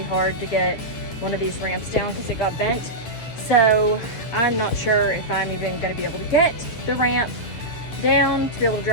hard to get one of these ramps down because it got bent. So I'm not sure if I'm even gonna be able to get the ramp down to be able to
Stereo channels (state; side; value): late; right; 8.8 ms